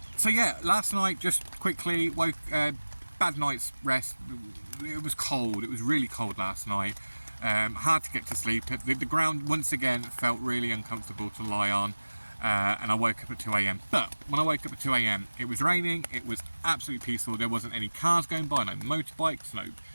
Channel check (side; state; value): both; inverted; correlation -1.00